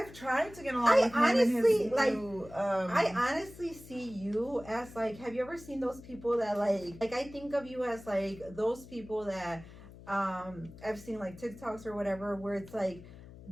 tried to get along with him and his new, I honestly see you as, like, have you ever seen those people that, like I think of you as, like, those people that I've seen, like, TikToks or whatever, where it's like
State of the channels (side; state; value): left; noise; hum, 18 dB below the sound